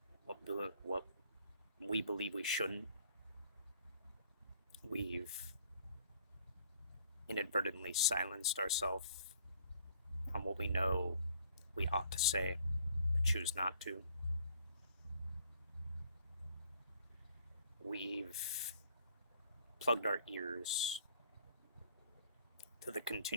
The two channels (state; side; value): inverted; both; correlation -0.61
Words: what we believe we shouldn't. We've inadvertently silenced ourselves on what we know we ought to say, but choose not to. We've plugged our ears to the